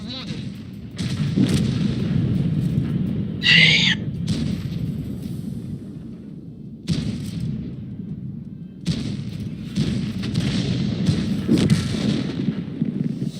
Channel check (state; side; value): identical; both; correlation 1.00